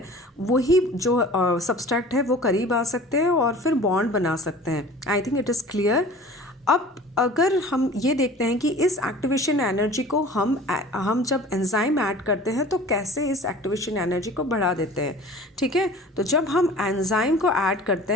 वही जो सब्सट्रैक्ट है वो करीब आ सकते हैं और फिर बॉन्ड बना सकते हैं. I think it is clear. अब अगर हम ये देखते हैं कि इस एक्टिवेशन एनर्जी को हम जब एंजाइम ऐड करते हैं तो कैसे इस एक्टिवेशन एनर्जी को बढ़ा देते हैं, ठीक है। तो जब हम एंजाइम को ऐड करते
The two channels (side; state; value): both; normal; correlation 0.43